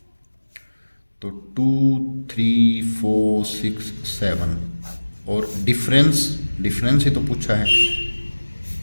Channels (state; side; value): inverted; both; correlation -1.00